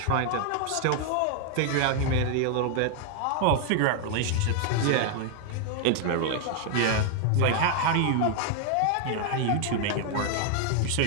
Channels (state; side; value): different; both; correlation 0.00